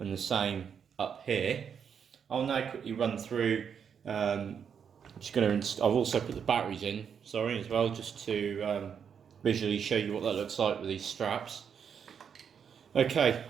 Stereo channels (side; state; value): left; quieter; 7.4 dB